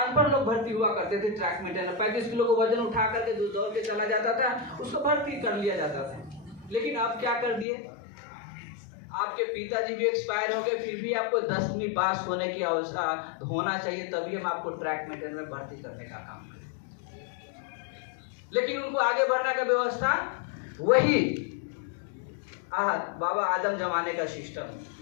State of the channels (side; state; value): right; drops out; at 7.7 s